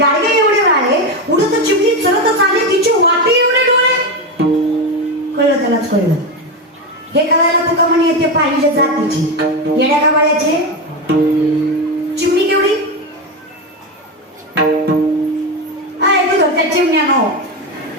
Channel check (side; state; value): both; normal; correlation 0.14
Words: एवढे राळे, उडत चिमणी चलत आले तिची वाटी एवढे डोळे. कळलं त्यालाच कळलं. हे कळायला तुका म्हणे येते पाहिजे जातीची, येड्या का बाळ्याचे. चिमणी केवढी तू धरत्या चिमण्या नो,